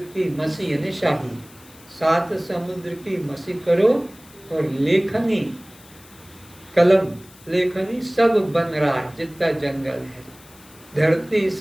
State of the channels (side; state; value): left; noise; hiss, 24 dB below the sound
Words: की मसी यानी शाही, 7 समुद्र की मसी करो, और लेखनी, कलम, लेखनी सब बन रहा है जितना जंगल है। धरती